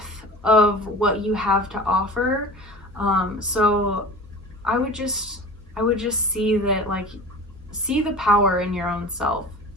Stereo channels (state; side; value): normal; both; correlation 0.36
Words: of what you have to offer. So I would just see that, like, see the power in your own self,